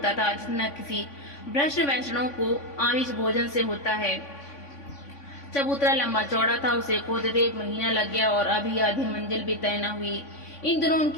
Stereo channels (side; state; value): right; late; 3.5 ms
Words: था जितना किसी भ्रष्ट वैष्णव को आमिष भोजन से होता है। चबूतरा लंबा चौड़ा था। उसे खोदते 1 महीना लग गया और अभी आधी मंजिल भी तय न हुई। इन दिनों